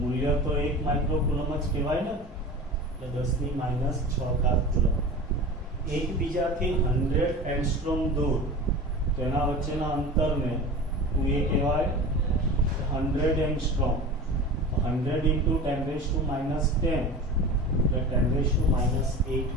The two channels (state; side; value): normal; both; correlation 0.33